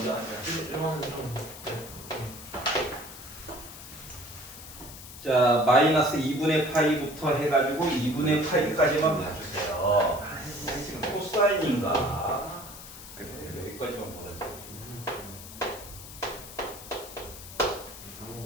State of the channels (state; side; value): noise; left; hiss, 14 dB below the sound